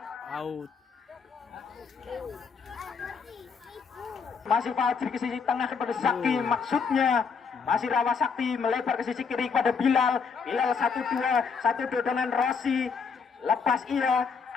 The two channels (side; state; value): right; quieter; 5.7 dB